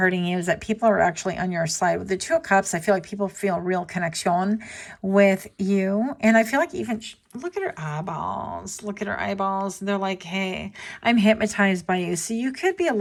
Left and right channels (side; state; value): both; identical; correlation 1.00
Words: you is that people are actually on your side. With the Two of Cups, I feel like people feel real connection with you. And I feel like even, look at her eyeballs. Look at her eyeballs. They're like, hey, I'm hypnotized by you. So you could be a